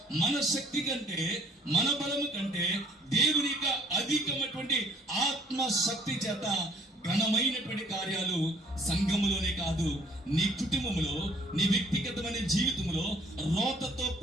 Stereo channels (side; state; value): both; normal; correlation 0.60